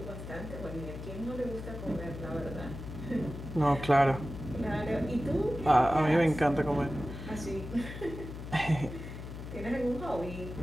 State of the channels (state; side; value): noise; left; hum, 9 dB below the sound